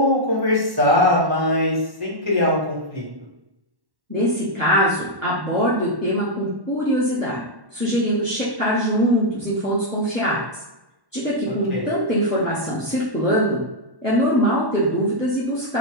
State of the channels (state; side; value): late; left; 1.1 ms